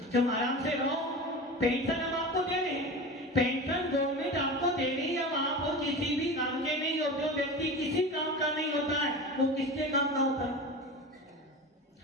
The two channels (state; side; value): normal; both; correlation 0.30